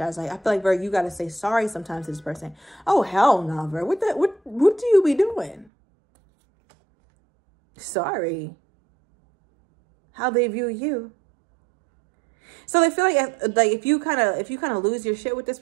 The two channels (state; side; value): drops out; left; at 5.7 s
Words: Like, I feel like, Virg, you got to say sorry sometimes to this person. Oh, hell no, Virg. What do you be doing? Sorry. How they view you. So they feel like if you kind of lose your shit with this